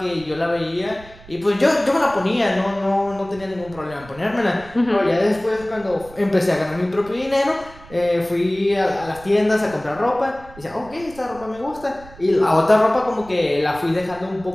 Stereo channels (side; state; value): right; noise; rumble, 21 dB below the sound